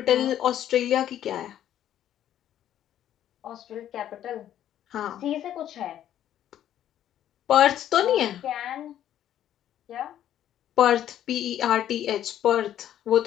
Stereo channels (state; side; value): quieter; right; 11.3 dB